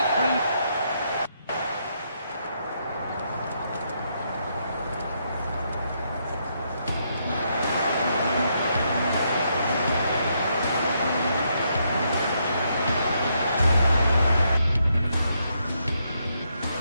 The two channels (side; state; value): both; inverted; correlation -0.77